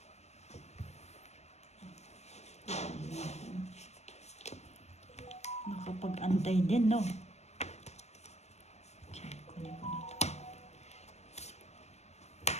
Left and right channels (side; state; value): right; late; 0.32 ms